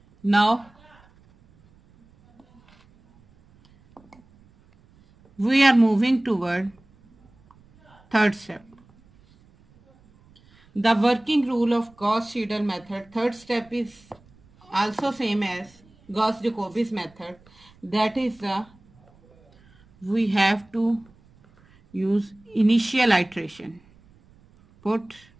Now we are moving toward third step. The working rule of Gauss-Seidal method, third step is also same as Gauss-Jacobi's method. That is, we have to use initial iteration. Put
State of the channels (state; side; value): noise; right; rumble, 30 dB below the sound